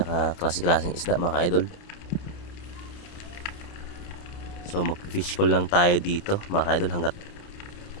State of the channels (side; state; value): right; late; 29 ms